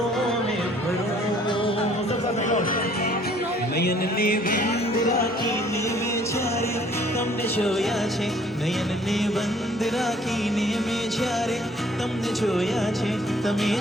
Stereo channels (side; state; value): both; normal; correlation 0.58